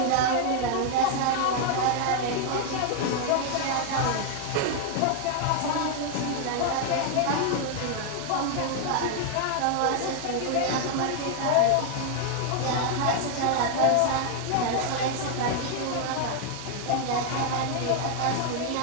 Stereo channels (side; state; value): both; different; correlation 0.00